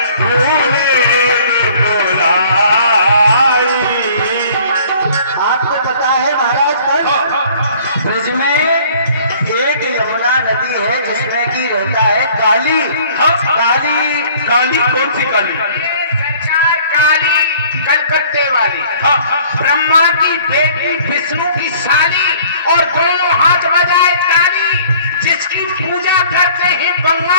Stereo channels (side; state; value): both; inverted; correlation -0.53